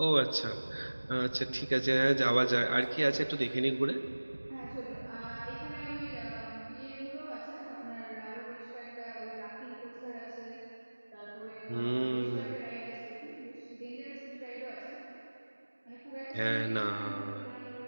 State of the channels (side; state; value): both; inverted; correlation -1.00